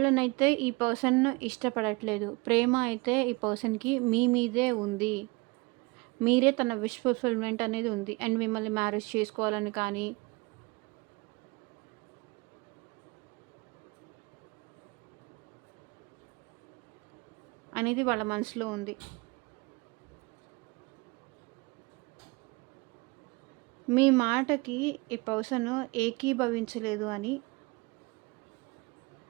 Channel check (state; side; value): quieter; left; 25.7 dB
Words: ఈ పర్సన్ ఇష్టపడట్లేదు. ప్రేమ అయితే ఈ పర్సన్‌కి మీ మీదే ఉంది. మీరే తన విష్ ఫుల్‌ఫిల్‌మెంట్ అనేది ఉంది. అండ్ మిమ్మల్ని మ్యారేజ్ చేసుకోవాలని కానీ అనేది వాళ్ళ మనసులో ఉంది. మీ మాటకి ఈ పర్సన్ ఏకీభవించలేదు అని